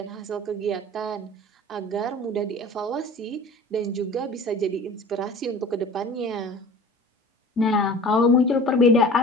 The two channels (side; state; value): both; normal; correlation 0.41